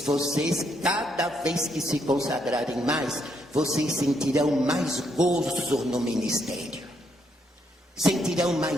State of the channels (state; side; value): normal; both; correlation 0.75